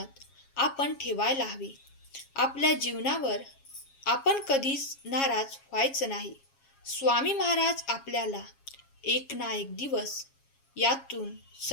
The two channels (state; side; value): late; right; 7.3 ms